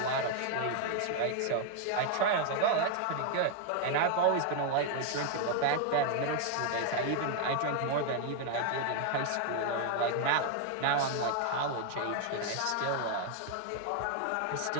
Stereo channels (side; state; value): both; different; correlation 0.00